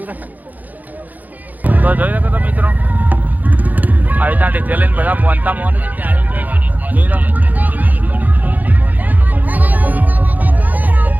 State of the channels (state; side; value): late; left; 0.082 ms